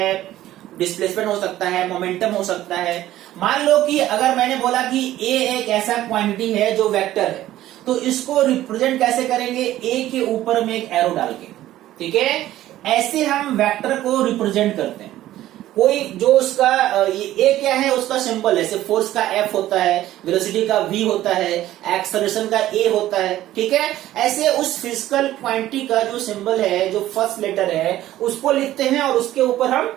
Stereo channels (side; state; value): left; quieter; 14.1 dB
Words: डिस्प्लेसमेंट हो सकता है, मोमेंटम हो सकता है। मान लो कि अगर मैंने बोला कि ए एक ऐसा क्वांटिटी है जो वेक्टर है, तो इसको रिप्रेजेंट कैसे करेंगे, ए के ऊपर में एक एरो डाल के, ठीक है। ऐसे हम वेक्टर को रिप्रेजेंट करते हैं। कोई जो उसका ए क्या है, उसका सिंबल है, सिर्फ फोर्स का एफ होता है, वेलोसिटी का वी होता है, एक्सेलरेशन का ए होता है, ठीक है। ऐसे उस फिजिकल क्वांटिटी का जो सिंबल है, जो फर्स्ट लेटर है, उसको लिखते हैं और उसके ऊपर